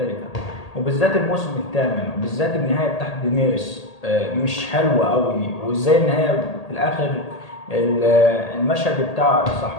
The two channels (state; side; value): late; right; 1.8 ms